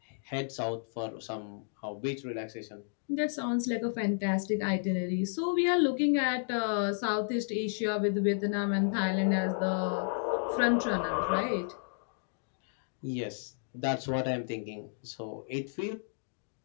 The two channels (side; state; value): right; silent; digital silence